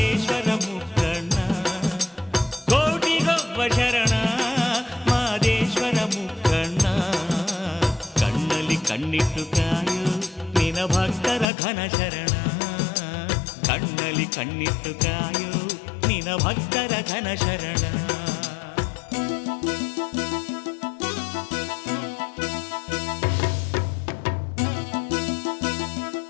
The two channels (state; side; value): drops out; right; at 11.5 s